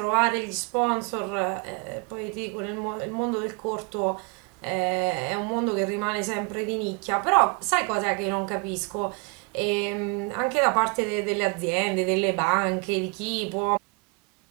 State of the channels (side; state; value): left; quieter; 32.8 dB